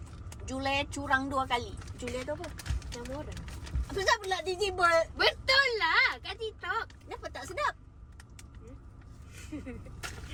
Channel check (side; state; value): both; identical; correlation 1.00